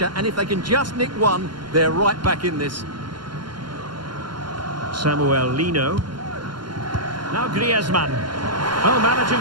and if they can just nick one, they're right back in this. Samuel Lino. Now Griezmann. Oh,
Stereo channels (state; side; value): late; left; 0.72 ms